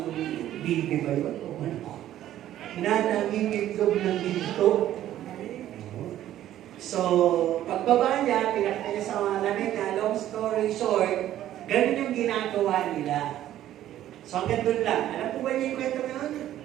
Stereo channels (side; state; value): left; quieter; 12.6 dB